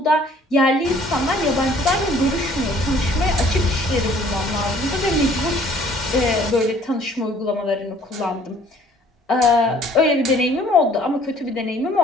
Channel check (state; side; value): normal; both; correlation 0.56